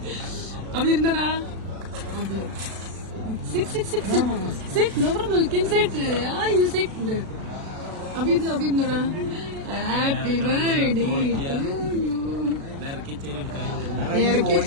അപ്പൊ ഇരുന്നടാ. Sit, sit, sit, sit. Sit, no problem. You can sit. Yeah, you sit. Abirnada. Happy birthday to you.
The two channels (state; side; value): late; left; 36 ms